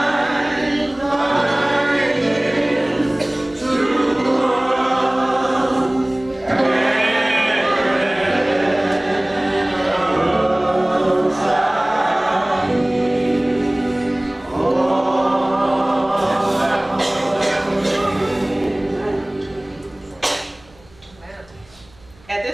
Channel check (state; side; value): noise; right; hum, 28 dB below the sound